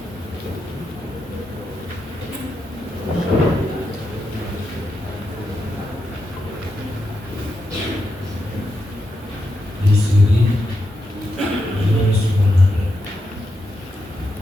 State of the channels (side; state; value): both; normal; correlation 0.85